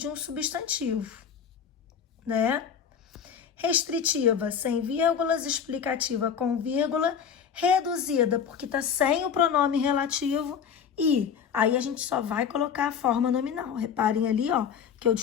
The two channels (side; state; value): right; quieter; 7.5 dB